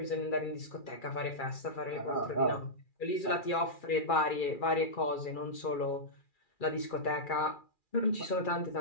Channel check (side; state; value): right; late; 2.4 ms